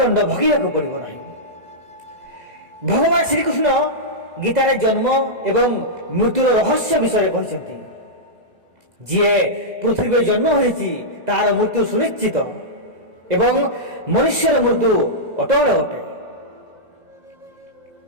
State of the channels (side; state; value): left; late; 2.0 ms